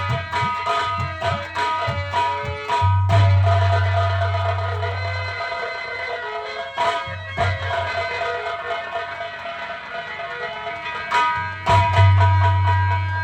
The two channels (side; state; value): both; identical; correlation 1.00